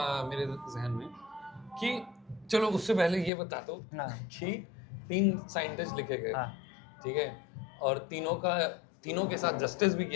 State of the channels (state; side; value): drops out; right; at 3.3 s